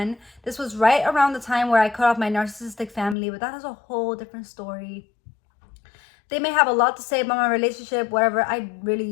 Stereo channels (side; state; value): right; drops out; at 3.2 s